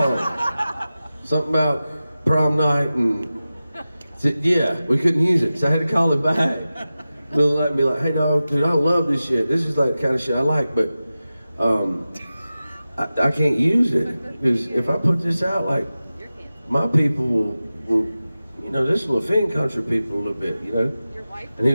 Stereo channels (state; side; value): inverted; both; correlation -0.95